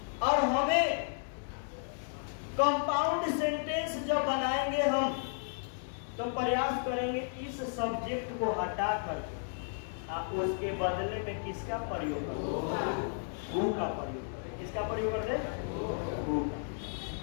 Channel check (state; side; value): silent; right; 55 dB below the other